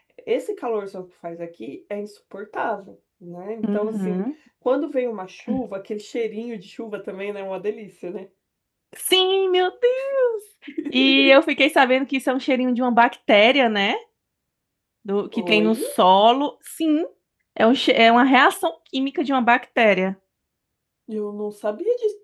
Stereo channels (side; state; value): both; identical; correlation 1.00